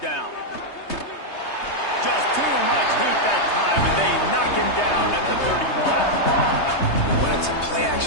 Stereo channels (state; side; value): late; right; 3.2 ms